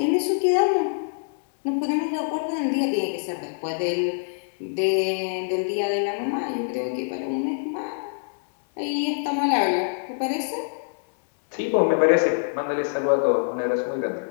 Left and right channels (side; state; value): right; silent; digital silence